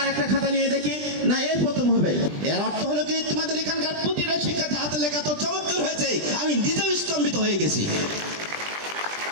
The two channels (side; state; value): left; late; 20 ms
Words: একটা খাতা নিয়ে দেখি না এই প্রথম হবে। এর অর্থ হলো কি, তোমাদের এখানকার প্রতিটা শিক্ষার্থী হাতে লেখা তো চমৎকার হয়েছে, আমি নিজেও স্তম্ভিত হয়ে গেছি।